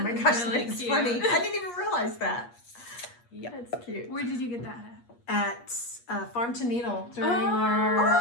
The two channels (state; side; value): late; right; 8.5 ms